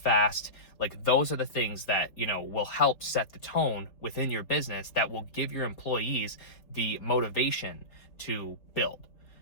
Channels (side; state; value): right; late; 4.2 ms